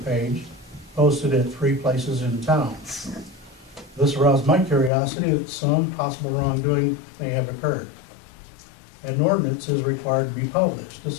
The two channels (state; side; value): drops out; right; at 4.9 s